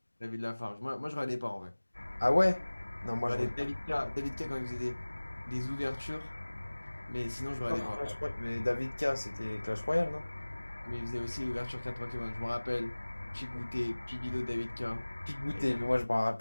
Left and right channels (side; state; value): both; inverted; correlation -1.00